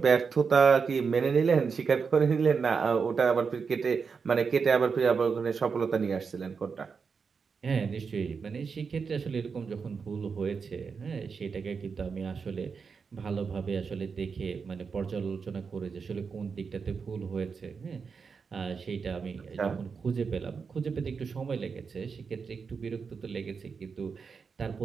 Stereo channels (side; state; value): left; quieter; 5.5 dB